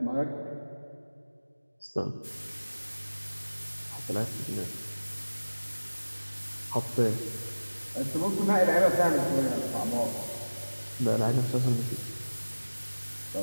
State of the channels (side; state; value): both; inverted; correlation -1.00